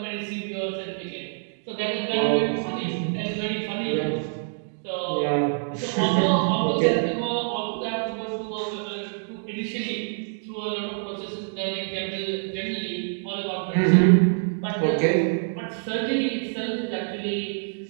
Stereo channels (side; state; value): left; silent; digital silence